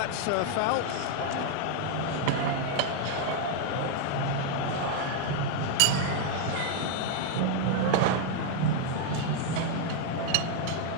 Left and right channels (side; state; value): both; different; correlation 0.00